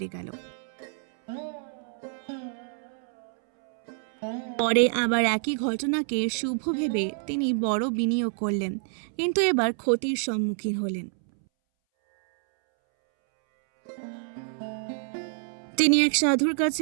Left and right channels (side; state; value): left; silent; 60 dB below the other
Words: গেল। পরে আবার একই ঘটনাকে শুভ ভেবে তিনি বড় বিনিয়োগ করলেন, কিন্তু এবার ক্ষতির সম্মুখীন হলেন। তিনি এক সাধুর